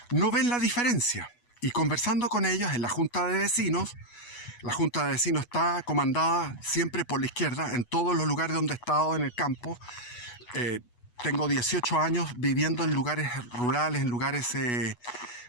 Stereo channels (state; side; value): late; right; 8.2 ms